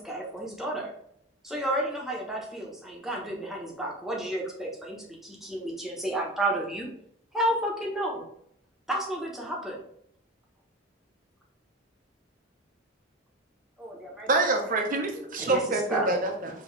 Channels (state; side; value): normal; both; correlation 0.22